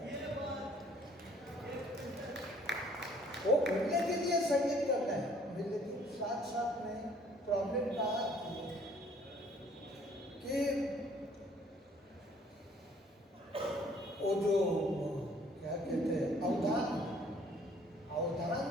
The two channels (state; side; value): normal; both; correlation 0.58